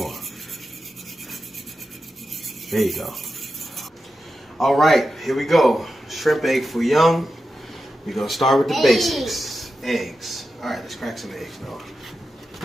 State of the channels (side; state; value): both; normal; correlation 0.90